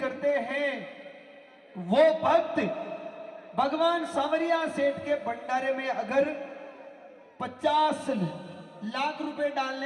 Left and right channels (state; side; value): identical; both; correlation 1.00